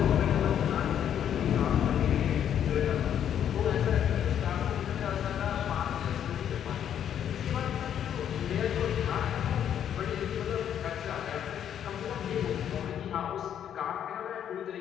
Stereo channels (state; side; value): quieter; right; 9.5 dB